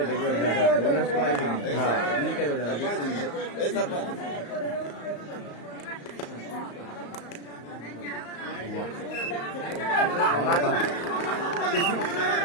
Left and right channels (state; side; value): late; right; 34 ms